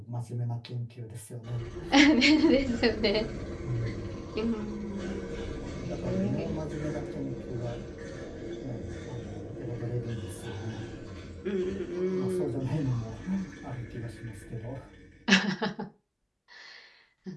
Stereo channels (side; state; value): both; identical; correlation 1.00